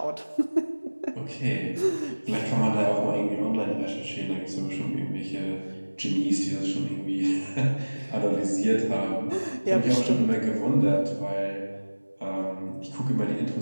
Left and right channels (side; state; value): both; inverted; correlation -1.00